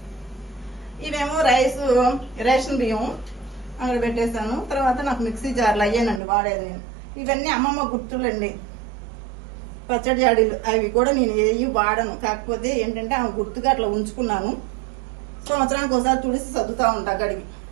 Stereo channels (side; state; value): left; drops out; at 6.2 s